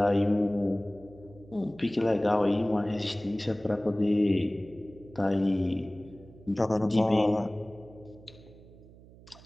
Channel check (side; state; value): right; noise; hum, 22 dB below the sound